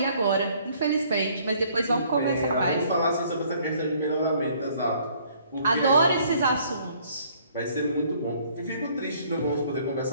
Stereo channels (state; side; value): inverted; both; correlation -0.61